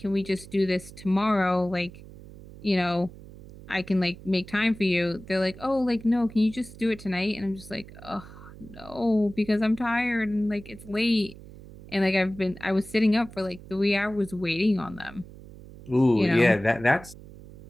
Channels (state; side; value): noise; right; hum, 17 dB below the sound